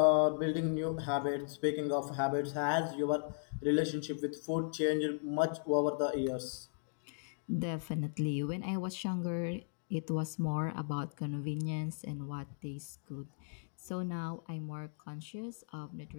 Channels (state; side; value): silent; right; digital silence